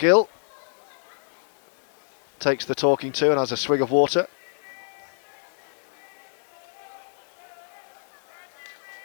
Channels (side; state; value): right; silent; digital silence